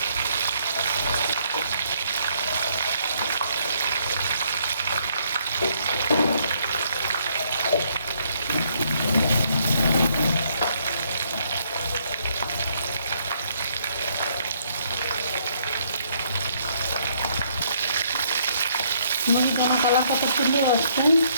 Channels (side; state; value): both; inverted; correlation -0.69